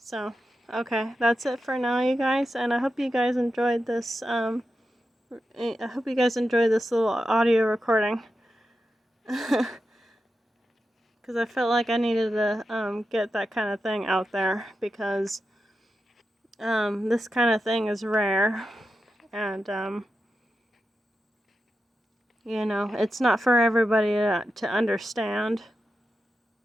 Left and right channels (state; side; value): normal; both; correlation 0.90